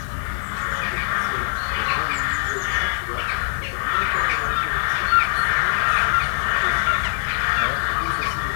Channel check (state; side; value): silent; right; 61 dB below the other